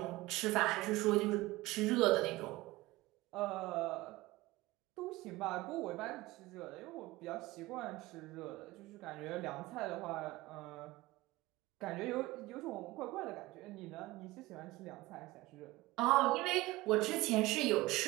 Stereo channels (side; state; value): left; quieter; 19.6 dB